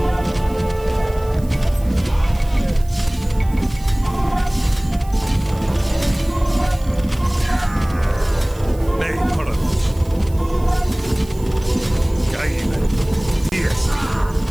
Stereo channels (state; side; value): noise; right; hiss, 23 dB below the sound